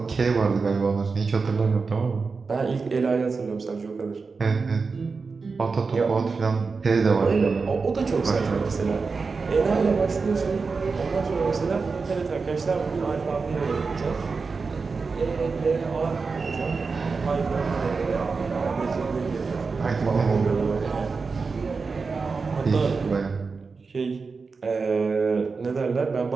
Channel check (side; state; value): left; quieter; 4.6 dB